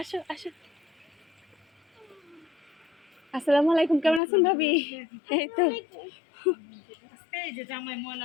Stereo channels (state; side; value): drops out; right; at 4.2 s